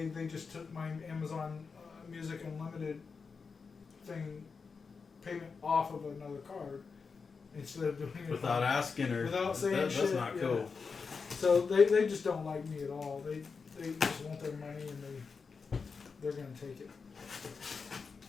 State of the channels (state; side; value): quieter; right; 5.1 dB